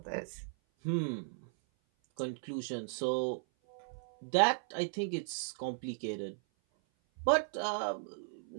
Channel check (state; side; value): silent; left; 54 dB below the other